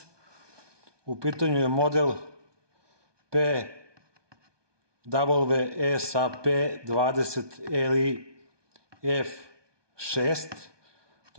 U pitanju je model PWSAP20LI F6.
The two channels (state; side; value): late; left; 1.2 ms